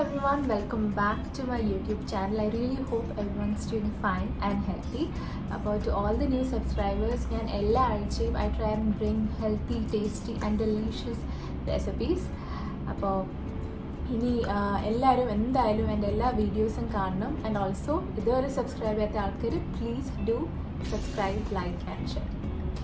everyone, welcome back to my YouTube channel. I really hope everyone's doing fine and healthy. To all the new subscribers, I try and bring healthy, tasty and delicious recipes. ഇനി എല്ലാവരും എന്തായാലും എൻ്റെ എല്ലാ വീഡിയോസും കാണണം. And also ഇതുവരെ subscribe ചെയ്യാത്ത ആൾക്കാർ please do subscribe, like and share.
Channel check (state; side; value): identical; both; correlation 1.00